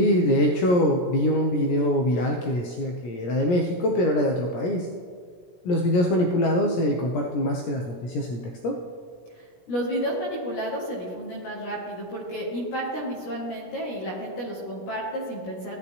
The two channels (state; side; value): late; right; 17 ms